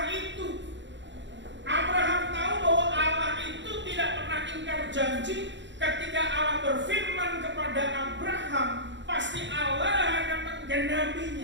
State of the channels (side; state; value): left; late; 0.53 ms